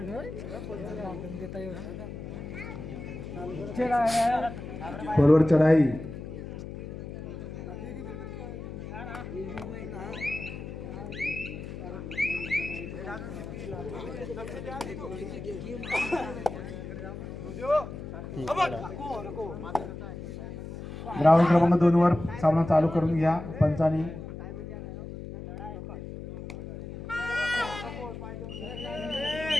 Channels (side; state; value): left; noise; hum, 9 dB below the sound